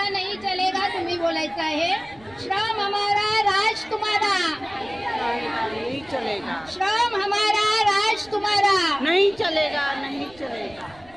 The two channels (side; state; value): right; noise; rumble, 25 dB below the sound